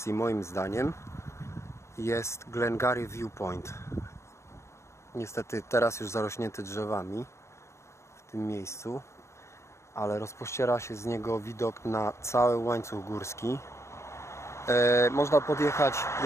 moim zdaniem, jest Glengarry Viewpoint. Niestety teraz już zarośnięty drzewami w tym miejscu, ale rozpościera się z niego widok na cały łańcuch górski. Można podjechać,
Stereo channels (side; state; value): right; late; 0.13 ms